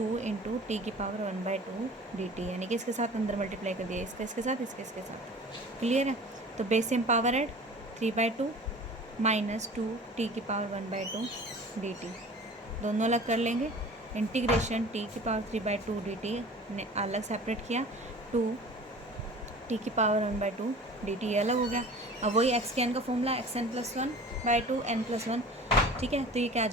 इंटू टी की पावर 1/2 डी टी, यानी कि इसके साथ अंदर मल्टीप्लाई कर दिया, इसका इसके साथ, इसके इसके साथ। क्लियर है, तो base same power add 3/2 minus 2 T की पावर 1/2 डी टी, दोनों अलग कर लेंगे। इंटीग्रेशन टी की पावर 3/2 डी टी ने अलग सेपरेट किया, 2 टी की पावर 1/2 डी टी अलग हो गया। अब वही एक्स के एन का formula, X N plus 1/2 N plus 1। ठीक है, तो ये क्या आ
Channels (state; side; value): normal; both; correlation 0.42